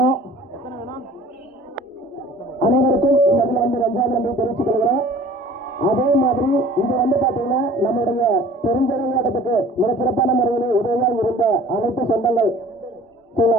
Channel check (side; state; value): both; normal; correlation 0.48